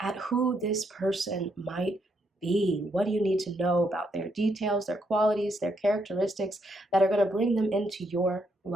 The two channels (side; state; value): both; normal; correlation 0.76